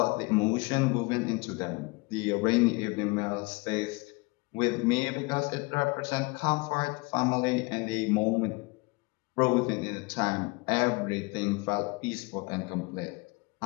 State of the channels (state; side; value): quieter; right; 26.6 dB